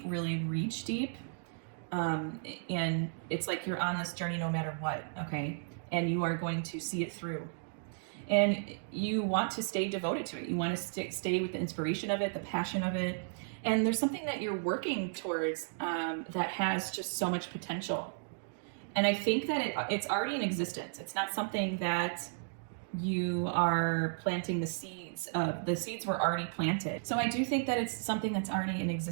really reach deep. And it's like you're on this journey no matter what, okay? And you are going to see it through. And you want to stay devoted to it. You want to stay with the inspiration of it, the passion of it. And there's something that you're working towards that has just so much potential. And I think that it's already in existence. It's not something that you are planting the seeds of. The seeds were already planted. So I do think that it's something that's already in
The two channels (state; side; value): silent; left; digital silence